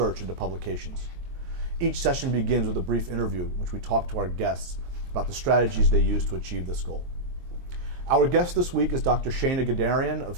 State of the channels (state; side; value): late; left; 23 ms